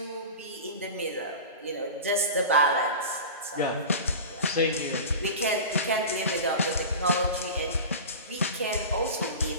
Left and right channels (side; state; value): both; inverted; correlation -0.31